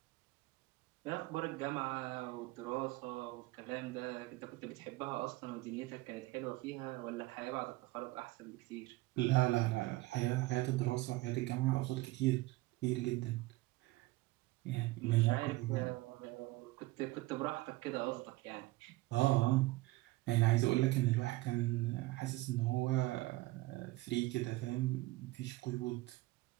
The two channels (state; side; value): quieter; left; 19.9 dB